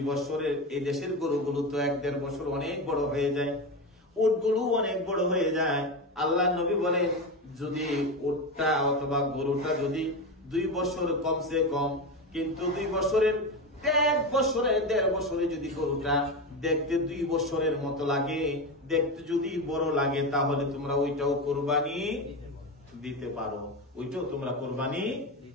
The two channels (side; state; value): both; normal; correlation 0.19